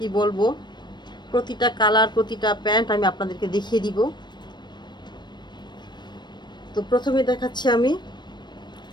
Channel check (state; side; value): late; right; 0.22 ms